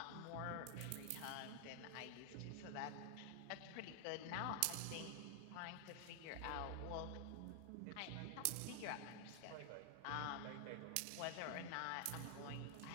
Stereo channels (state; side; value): different; both; correlation 0.00